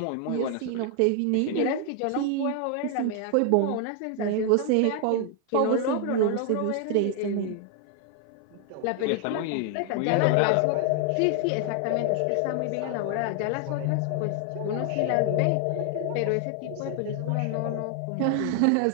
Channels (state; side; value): different; both; correlation 0.00